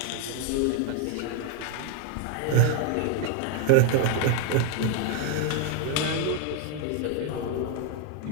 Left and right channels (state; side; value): different; both; correlation 0.01